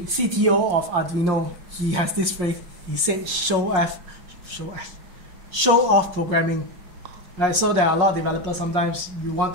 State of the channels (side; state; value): left; late; 5.5 ms